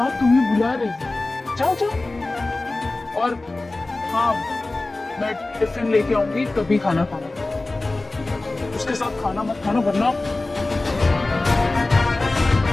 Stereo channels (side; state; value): right; quieter; 3.1 dB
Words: तुम्हें बुला रही है, जाओ जाओ। और हाँ, मैं टिफिन लेके आऊंगी, तभी खाना खाना, उसके साथ खाना मत खाना वरना।